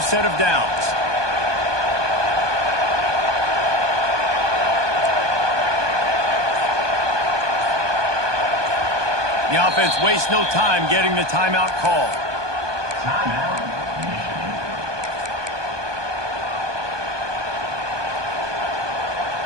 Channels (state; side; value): late; left; 1.2 ms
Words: of downs. The offense wastes no time getting the timeout called. And